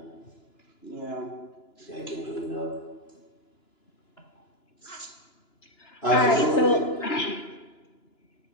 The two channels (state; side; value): late; right; 2.9 ms